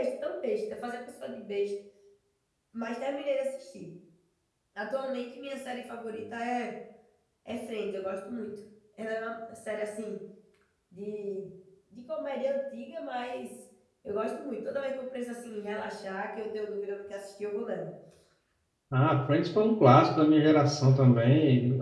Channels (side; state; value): both; identical; correlation 1.00